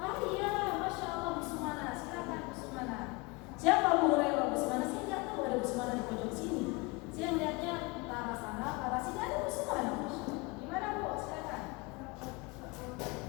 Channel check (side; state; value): right; quieter; 25.8 dB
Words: Oh iya, Masya Allah, Bu Sumana, silakan Bu Sumana. Siapa Abu Hurairah? Bu Sumana, saya nggak tahu ada Bu Sumana di pojok sini. Saya melihatnya ke arah sana, ke arah sini ada Bu Sumana. Gimana Bu? Silakan.